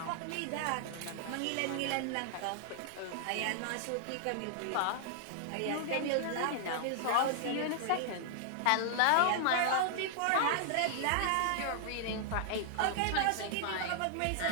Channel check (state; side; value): different; both; correlation -0.01